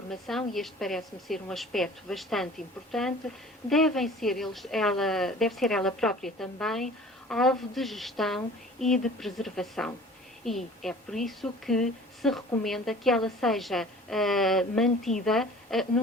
e este parece-me ser um aspecto bastante importante, deve ser ela própria também alvo de gestão e de preservação. E é por isso que se recomenda que ela seja mantida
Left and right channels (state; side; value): normal; both; correlation 0.46